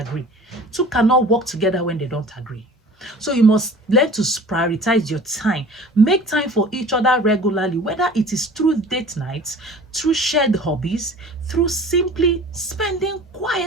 Two cannot work together when they don't agree. So you must learn to prioritize your time. Make time for each other regularly, whether it is through date nights, through shared hobbies, through simply spending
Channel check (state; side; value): normal; both; correlation 0.44